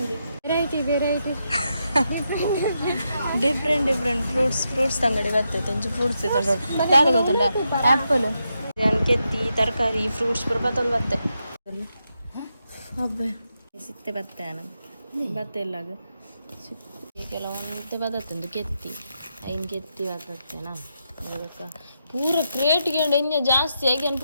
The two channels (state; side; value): inverted; both; correlation -0.84